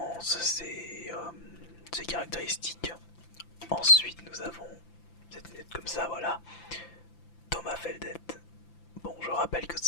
ses caractéristiques. Ensuite nous avons cette lunette comme ça, voilà, Thomas Feldet. Bon, je rappelle que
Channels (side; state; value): right; late; 5.9 ms